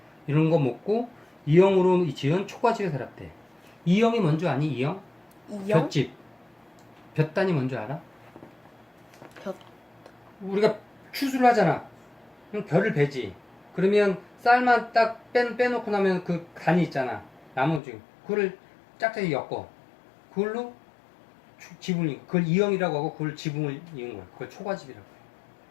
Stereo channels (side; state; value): right; drops out; at 17.8 s